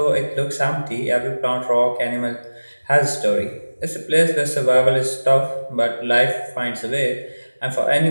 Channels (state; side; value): inverted; both; correlation -1.00